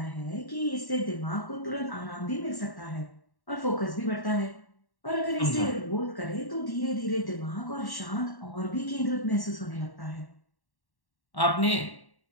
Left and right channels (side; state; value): right; late; 1.1 ms